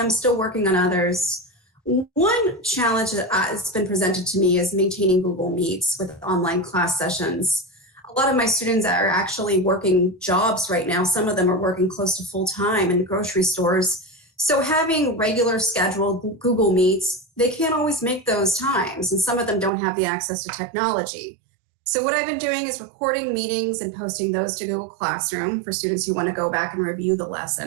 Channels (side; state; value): left; drops out; at 19.7 s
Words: still working on others. One challenge that has been presented to me is maintaining Google Meets with online class sessions. A lot of my students are actually working jobs right now. Some of them are working close to full time in grocery stores. So having regular scheduled Google Meets, they can't always make those times, and some of them don't have the access to technology. So what I've been doing is recording meetings and posting those to Google Classroom for students who want to go back and review the